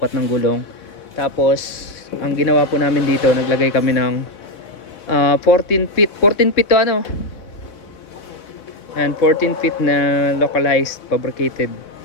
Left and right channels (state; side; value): late; right; 3.6 ms